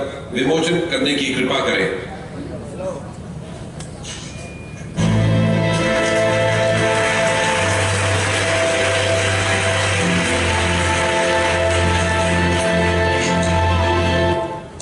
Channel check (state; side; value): identical; both; correlation 1.00